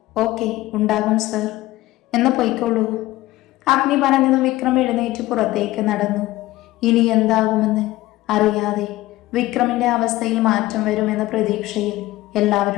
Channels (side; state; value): right; quieter; 17.4 dB